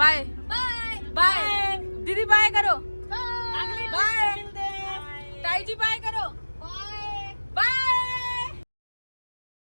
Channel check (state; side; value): inverted; both; correlation -1.00